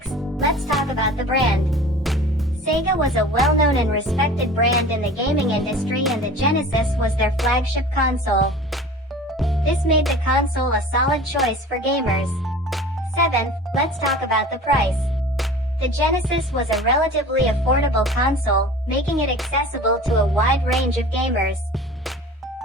let's talk about the brand. Sega was a well-known and respected brand in the gaming industry, and the Genesis was their flagship console. This made the console a solid choice for gamers. Seventh, let's talk about the price. The Genesis was a relatively affordable console, making it accessible to a wide range of gamers.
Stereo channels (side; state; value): both; normal; correlation 0.41